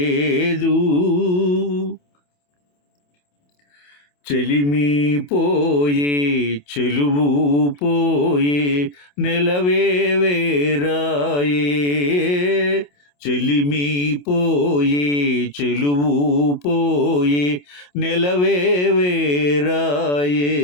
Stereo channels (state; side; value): late; right; 28 ms